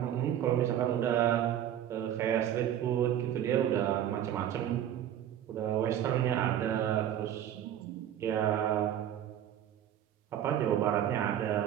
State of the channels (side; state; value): left; quieter; 10.8 dB